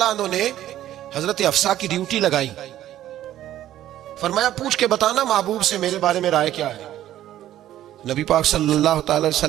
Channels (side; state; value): left; quieter; 12.8 dB